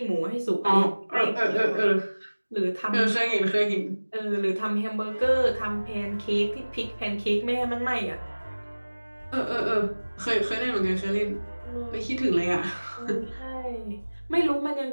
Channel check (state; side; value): inverted; both; correlation -1.00